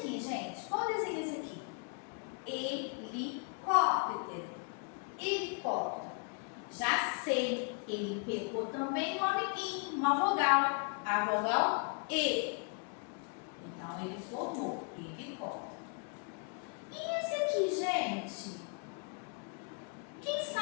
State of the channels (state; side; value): quieter; right; 38.1 dB